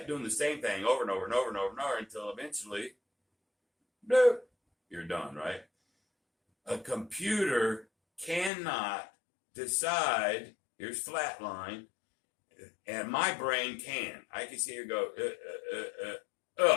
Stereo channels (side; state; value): right; drops out; at 8.5 s